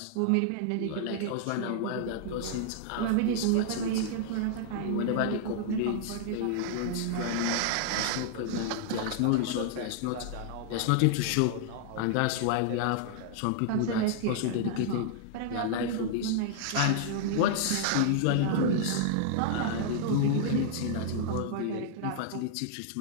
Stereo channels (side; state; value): both; different; correlation -0.01